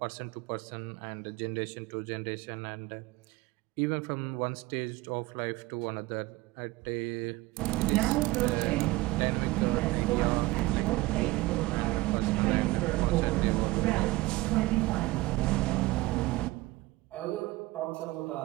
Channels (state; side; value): quieter; left; 19.7 dB